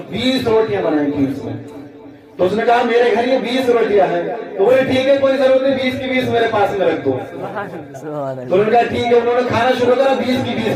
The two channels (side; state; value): both; identical; correlation 1.00